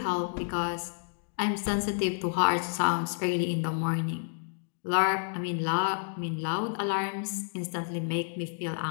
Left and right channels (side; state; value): right; silent; digital silence